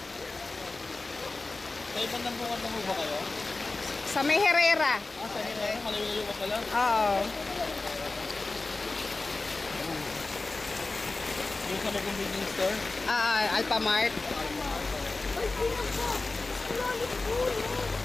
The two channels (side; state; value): right; quieter; 3.4 dB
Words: Sa ibang nambungan na ba kayo? Sa may Herrera. Ah, sa Herrera? Malayo-layo ka pala? Oo. Yung sa may convenience store? Alphamart.